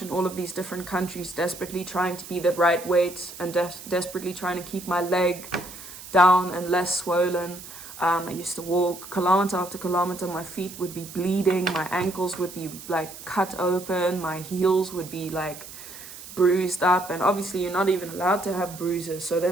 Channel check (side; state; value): right; noise; hiss, 14 dB below the sound